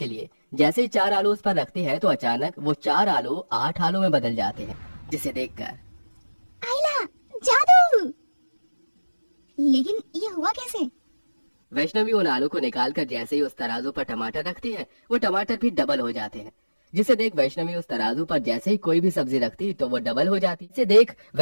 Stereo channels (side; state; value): both; inverted; correlation -1.00